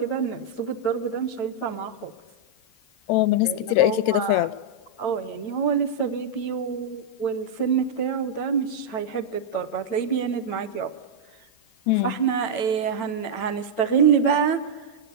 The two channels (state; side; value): late; right; 9.0 ms